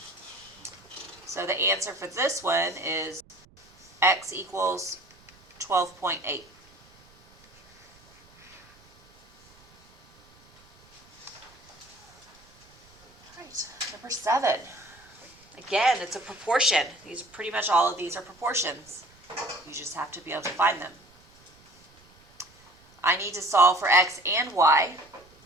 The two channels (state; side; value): noise; right; rumble, 29 dB below the sound